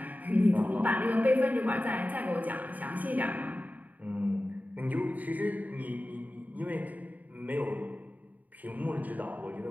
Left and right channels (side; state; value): left; late; 0.078 ms